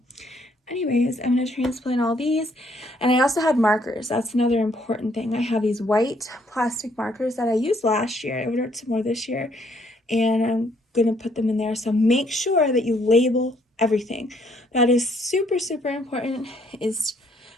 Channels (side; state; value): both; normal; correlation 0.67